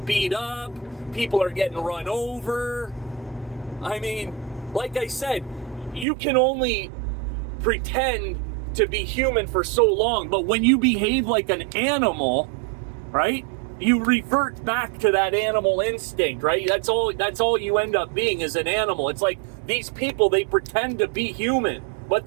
beat up, people are getting run over. I mean, like I said, you can only pretend to be human for so long, but when you behave like an animal, right? You revert back to that animal instinct, right? That's all you end up being, is an animal. It's like these people, they pretend to be human,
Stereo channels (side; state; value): left; drops out; at 6.1 s